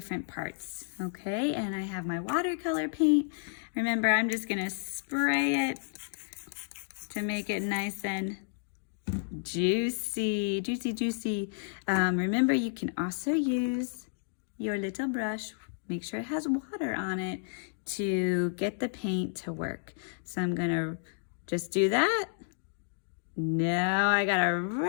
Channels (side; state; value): right; silent; digital silence